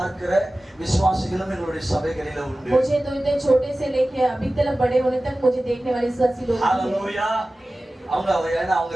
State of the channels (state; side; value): normal; both; correlation 0.96